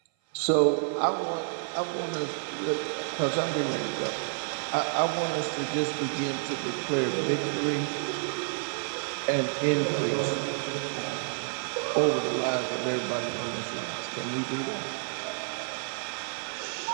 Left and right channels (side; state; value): left; silent; 55 dB below the other